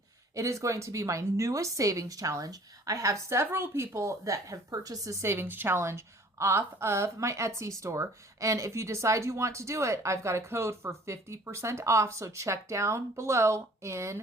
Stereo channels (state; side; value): normal; both; correlation 0.52